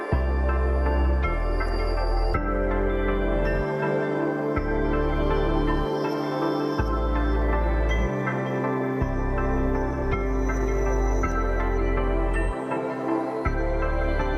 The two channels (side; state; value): both; identical; correlation 1.00